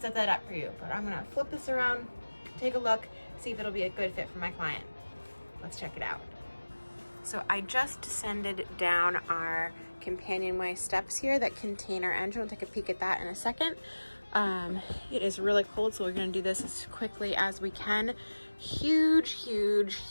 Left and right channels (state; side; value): inverted; both; correlation -1.00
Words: that up for you. But I'm gonna flip this around, take a look, see if it'll be a good fit for my client. Let's check it out. So I just descended down our companionway steps here that contain our engine. We'll take a peek at that in a second. It is really cold, so we're gonna do this as quickly as we can. Huge, huge,